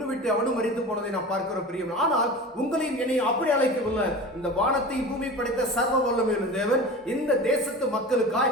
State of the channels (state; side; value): normal; both; correlation 0.33